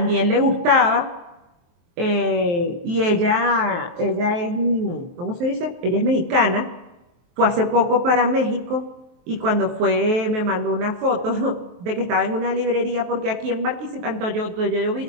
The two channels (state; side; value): late; left; 23 ms